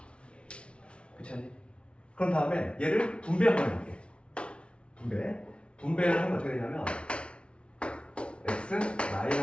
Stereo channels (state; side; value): late; right; 0.059 ms